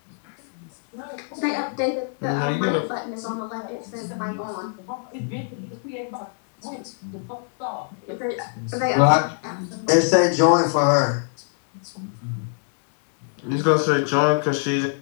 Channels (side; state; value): right; silent; 62 dB below the other